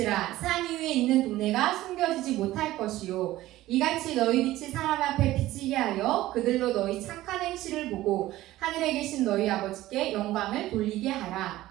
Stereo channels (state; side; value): quieter; left; 16.0 dB